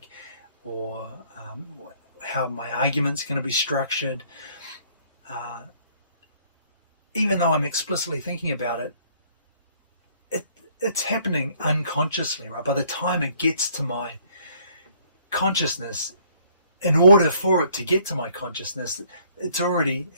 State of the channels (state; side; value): inverted; both; correlation -0.61